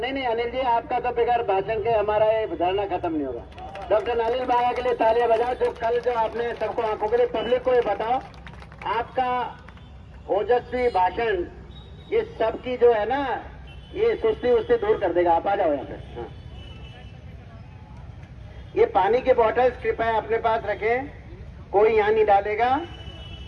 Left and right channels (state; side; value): identical; both; correlation 1.00